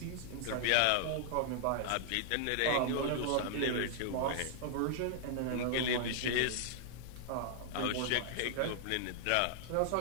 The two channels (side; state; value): both; different; correlation 0.00